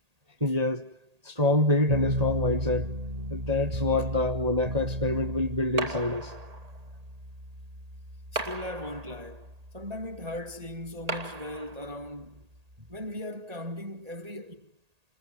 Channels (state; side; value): late; left; 1.8 ms